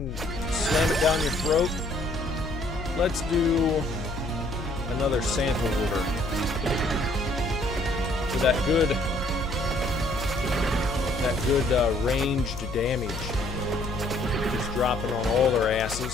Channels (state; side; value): noise; left; hum, 8 dB below the sound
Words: slam it down your throat. Let's do another Santa order. For that good ranged damage. Just dropping on all their